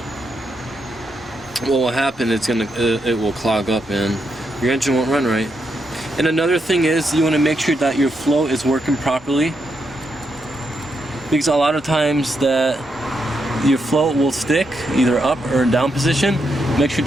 what will happen, it will clog up and your engine won't run right. And another thing is, you want to make sure that your flow is working properly, because a lot of times that your flow will stick either up or down position. Make sure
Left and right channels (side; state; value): both; normal; correlation 0.81